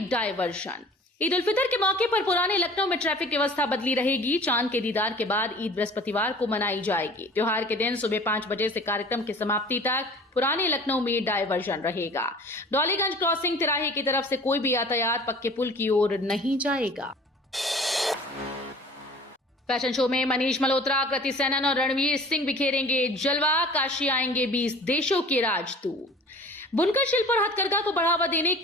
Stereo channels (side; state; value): both; normal; correlation 0.45